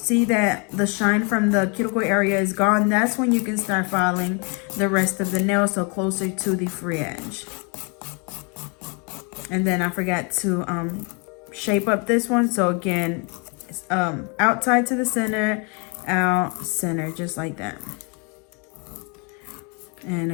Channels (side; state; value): right; quieter; 34.1 dB